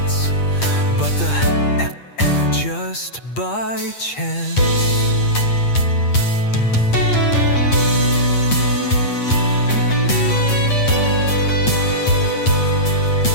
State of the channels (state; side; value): late; right; 8.5 ms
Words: but the just by chance.